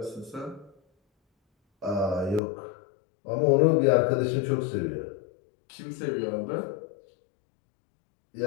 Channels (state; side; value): drops out; right; at 2.4 s